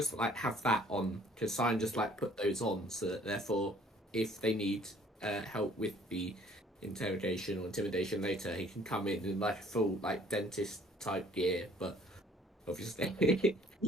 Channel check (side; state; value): both; normal; correlation 0.58